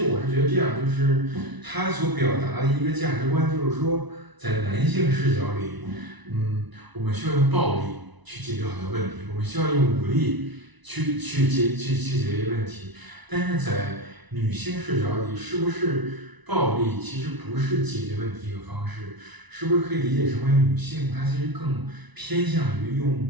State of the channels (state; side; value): late; left; 1.0 ms